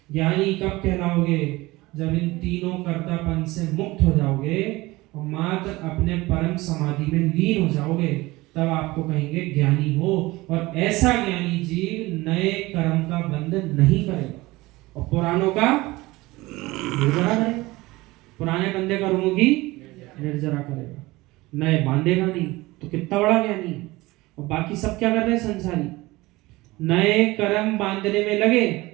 ज्ञानी कब कहलाओगे? जब इन तीनों कर्तापन से मुक्त हो जाओगे और मात्र अपने परम समाधि में लीन हो जाओगे, तब आपको कहेंगे ज्ञानी हो। और ऐसा ज्ञानी जीव नए कर्म का बंधन नहीं करेगा और पुरानों का निर्जरा करेगा। पुराने बंधे कर्मों की निर्जरा करेगा, नए बांधेगा नहीं। तो कितना बड़ा ज्ञानी है। और बाकी सब क्या कर रहे हैं? संसारी नए कर्म बांधने में लगे,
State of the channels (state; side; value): quieter; left; 20.4 dB